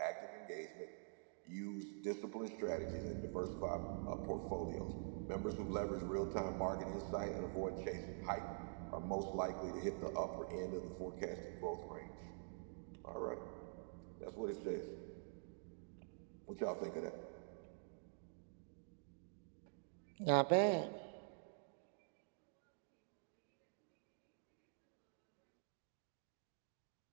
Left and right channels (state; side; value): silent; left; digital silence